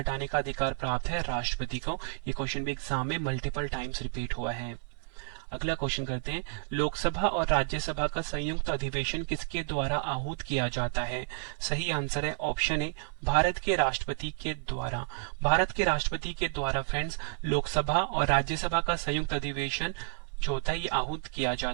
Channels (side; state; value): left; silent; 57 dB below the other